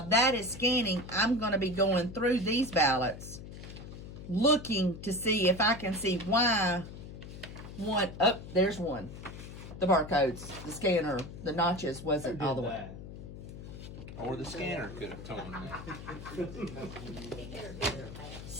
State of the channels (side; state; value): left; noise; hum, 12 dB below the sound